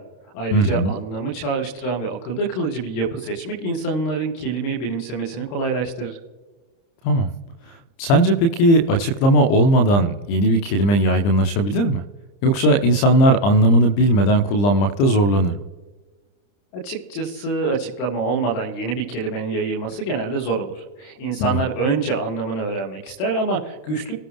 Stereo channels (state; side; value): late; right; 30 ms